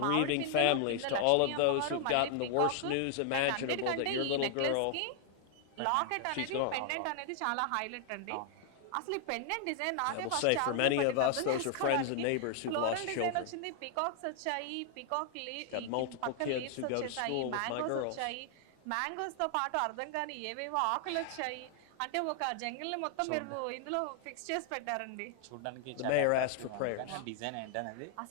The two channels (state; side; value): different; both; correlation 0.00